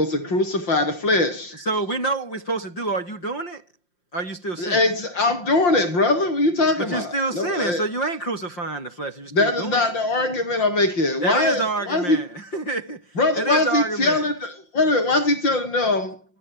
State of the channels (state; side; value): late; right; 5.7 ms